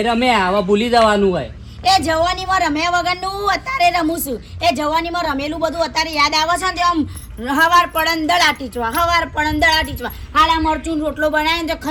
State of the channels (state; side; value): identical; both; correlation 1.00